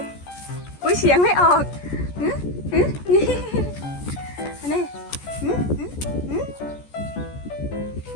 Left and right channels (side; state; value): right; late; 14 ms